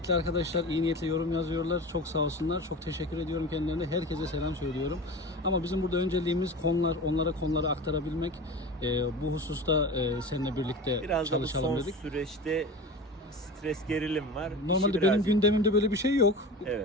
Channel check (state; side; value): normal; both; correlation 0.32